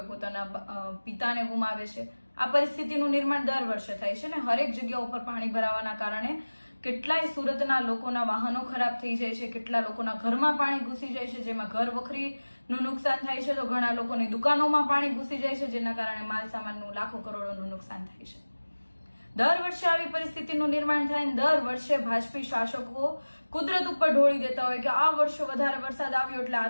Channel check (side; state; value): both; inverted; correlation -1.00